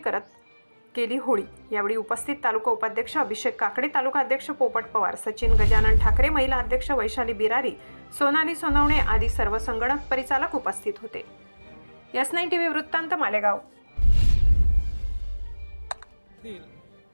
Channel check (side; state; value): both; inverted; correlation -1.00